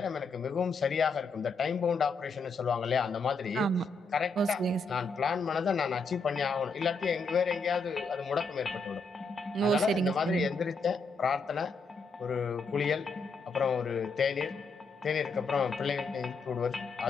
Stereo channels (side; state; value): right; quieter; 3.7 dB